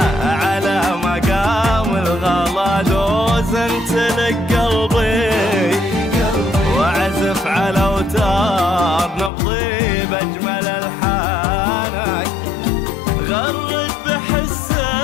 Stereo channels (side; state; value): right; drops out; at 9.3 s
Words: على مقام الغلا دوزنت لك قلبي، وعزف على اوتار نبضي باجمل الحانك. غرد